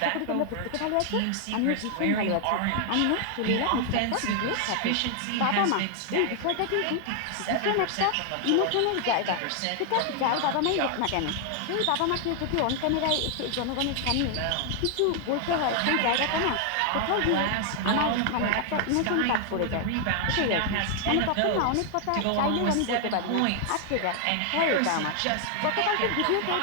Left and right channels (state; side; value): different; both; correlation 0.00